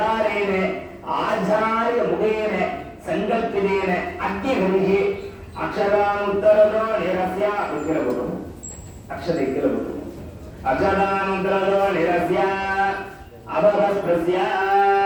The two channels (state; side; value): identical; both; correlation 1.00